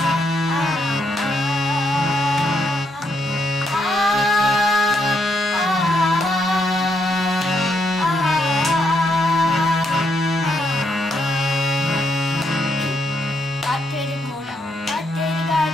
কাঠের ঘোড়া কাঠের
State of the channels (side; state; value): both; normal; correlation 0.77